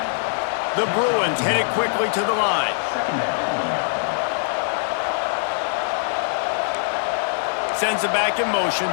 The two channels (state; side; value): silent; right; digital silence